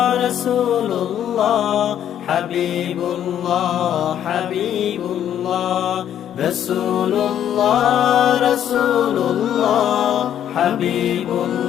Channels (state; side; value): quieter; right; 10.3 dB